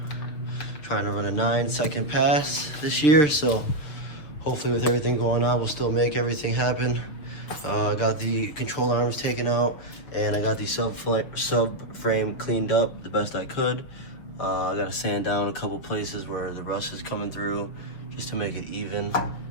Trying to run a 9-second pass this year, so hopefully with everything going on, we'll still make everything happen. I got the control arms taken out, and I got the subframe cleaned up the best I could. I got to sand down a couple places where the rust is coming through, just to make it even.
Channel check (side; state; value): right; late; 6.7 ms